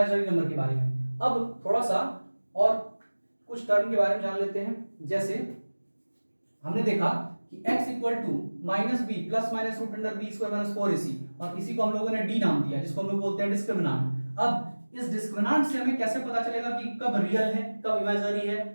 नंबर के बारे में। अब थोड़ा सा और कुछ टर्म के बारे में जान लेते हैं। जैसे हमने देखा कि x equal to -b plus minus root under b square minus 4ac, और इसी को हम लोगों ने d नाम दिया, जिसको हम लोग बोलते हैं डिस्क्रिमिनेंट। अब इस डिस्क्रिमिनेंट से हमें कैसे पता चलेगा कि कब रियल है, कब इमेजिनरी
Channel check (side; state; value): both; inverted; correlation -1.00